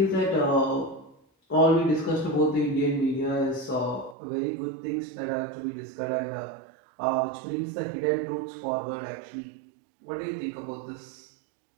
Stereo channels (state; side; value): drops out; left; at 4.2 s